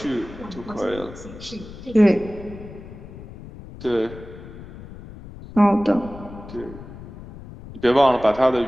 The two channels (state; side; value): noise; left; rumble, 15 dB below the sound